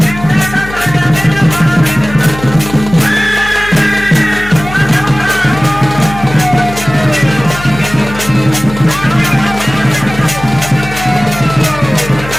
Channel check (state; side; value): noise; left; hum, 12 dB below the sound